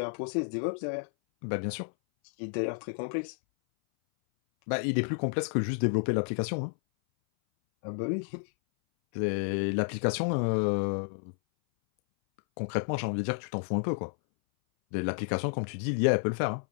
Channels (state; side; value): silent; right; 57 dB below the other